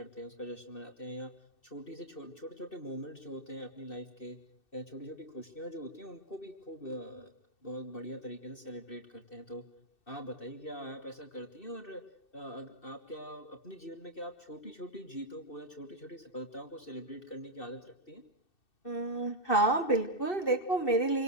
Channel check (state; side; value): late; right; 2.6 ms